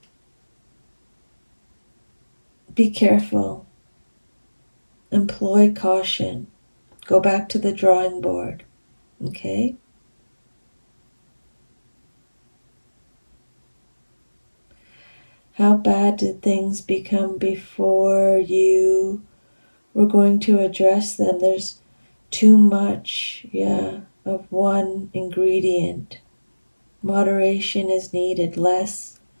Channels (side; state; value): both; inverted; correlation -1.00